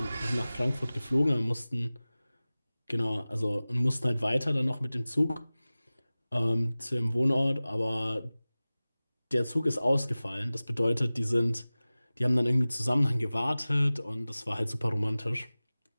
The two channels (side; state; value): both; inverted; correlation -0.98